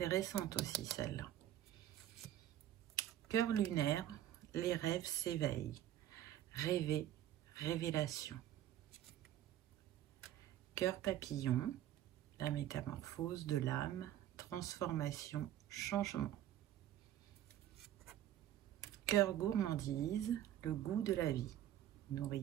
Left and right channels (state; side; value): quieter; left; 12.1 dB